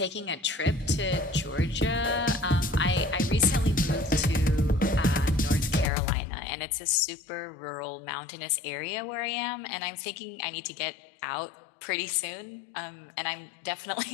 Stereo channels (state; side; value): drops out; right; at 5.9 s